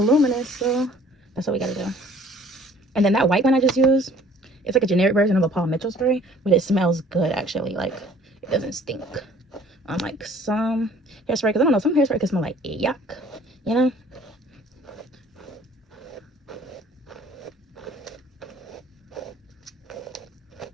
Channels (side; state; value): both; normal; correlation 0.54